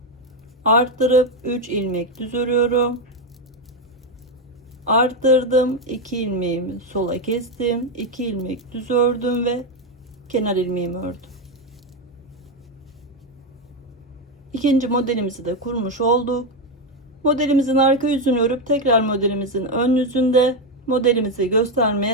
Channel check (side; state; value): both; normal; correlation 0.08